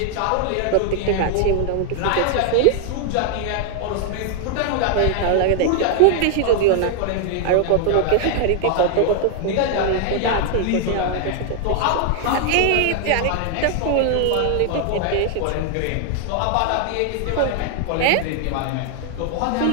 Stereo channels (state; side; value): different; both; correlation 0.00